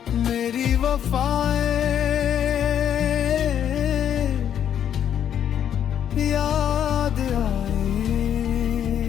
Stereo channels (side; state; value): right; quieter; 9.5 dB